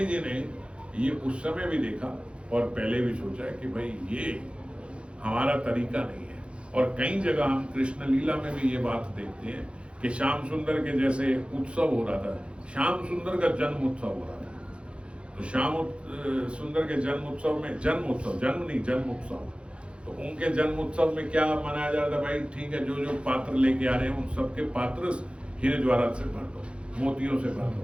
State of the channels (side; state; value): left; late; 0.059 ms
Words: जी ने ये उस समय भी देखा और पहले भी सोचा कि भाई ये हमारा तरीका नहीं है। और कई जगह हम कृष्ण लीला में भी ये बात देखते हैं कि श्याम सुंदर के जैसे उत्सव हो रहा था, श्याम सुंदर का जन्म उत्सव हो रहा था, तो श्याम सुंदर के जन्म उत्सव में, जन्म उत्सव, जन्म नहीं जन्म उत्सव, तो उनके जन्म उत्सव में क्या मनाया जा रहा था? भाई ठीक है, जो जो पात्र लेके आ रहे हैं उन सबके पात्र हीरे जवाहरात से भर दो, मोतियों से भर